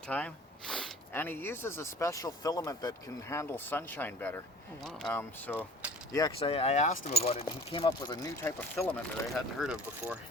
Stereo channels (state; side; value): normal; both; correlation 0.49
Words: and he uses a special filament that can handle sunshine better. Oh, wow. So, yeah, because I asked him about it, and he came up with a new type of filament that I hadn't heard of before.